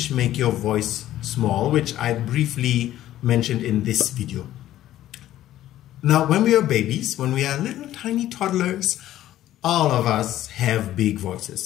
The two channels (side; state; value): right; quieter; 13.4 dB